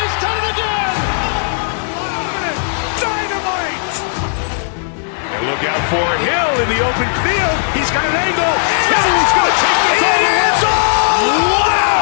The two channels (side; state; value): right; silent; 69 dB below the other